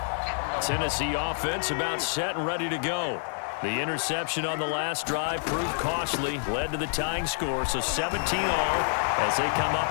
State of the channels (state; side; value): silent; right; digital silence